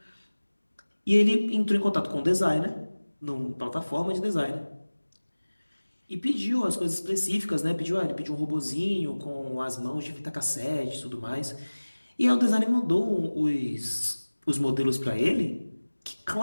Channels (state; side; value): inverted; both; correlation -1.00